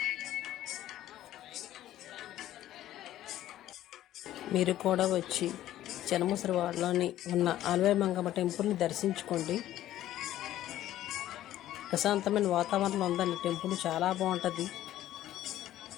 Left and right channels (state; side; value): quieter; right; 13.3 dB